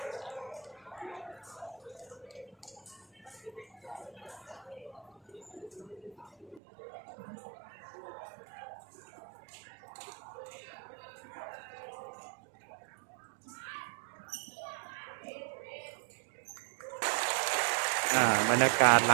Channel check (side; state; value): left; drops out; at 6.6 s